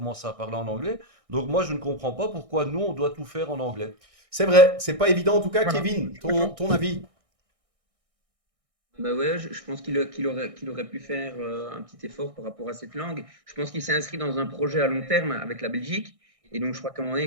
à parler en anglais. Donc moi, je ne comprends pas pourquoi nous, on doit tout faire en anglais. C'est vrai. C'est pas évident. En tout cas, voilà. Kevin, ton avis? Bah ouais, je pense qu'il aurait pu faire un petit effort par rapport à cette langue. Je pense qu'il s'est inscrit dans un projet à long terme avec la Belgique. Et donc, je crois qu'à un moment donné,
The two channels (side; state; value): left; late; 1.6 ms